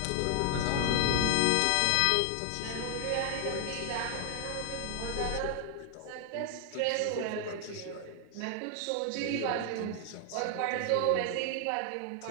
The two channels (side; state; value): both; different; correlation 0.00